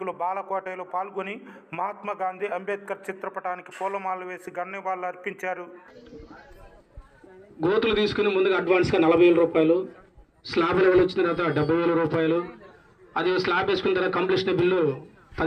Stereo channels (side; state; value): both; identical; correlation 1.00